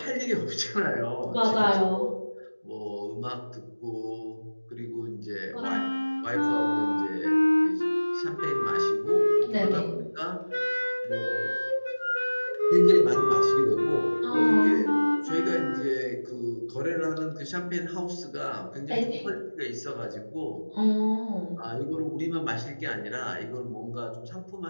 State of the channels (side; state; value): both; inverted; correlation -1.00